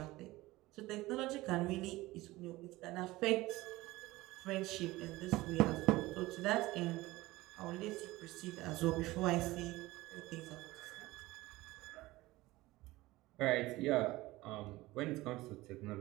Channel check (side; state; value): left; quieter; 19.0 dB